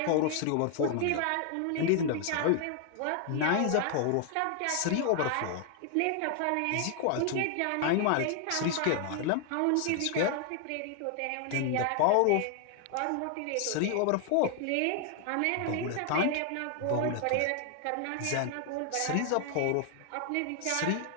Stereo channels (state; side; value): different; both; correlation 0.00